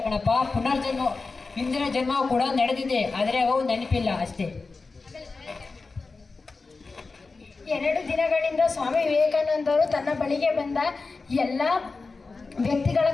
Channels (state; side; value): quieter; right; 4.0 dB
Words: ಕಣಪ್ಪ, ಪುನರ್ಜನ್ಮ, ಹಿಂದಿನ ಜನ್ಮ ಕೂಡ ನಡೆದಿದೆ, ಆದ್ರೆ ಅವು ನೆನಪಿಲ್ಲ ಅಷ್ಟೇ. 2 ದಿನಗಳಿಂದ ಸ್ವಾಮಿ ವಿವೇಕಾನಂದರು ತನ್ನ ಬಳಿಗೆ ಬಂದ ಎಲ್ಲ ವ್ಯಕ್ತಿಗಳ